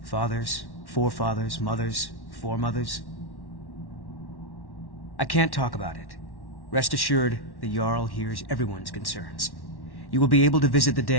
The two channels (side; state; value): right; late; 1.1 ms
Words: Fathers, forefathers, mothers, foremothers. I can't talk about it. Rest assured, the Jarl hears everyone's concerns. You will be able to visit the